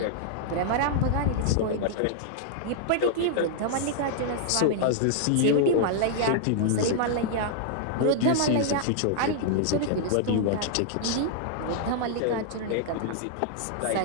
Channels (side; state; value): both; different; correlation -0.01